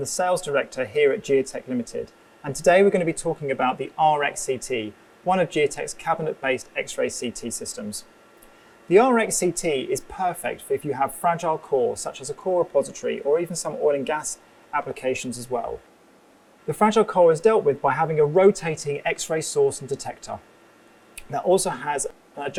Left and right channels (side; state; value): both; identical; correlation 1.00